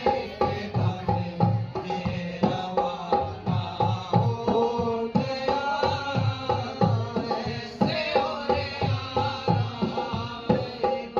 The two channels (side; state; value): both; identical; correlation 1.00